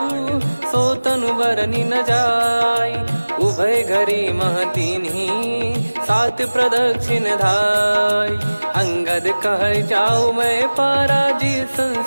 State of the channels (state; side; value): inverted; both; correlation -1.00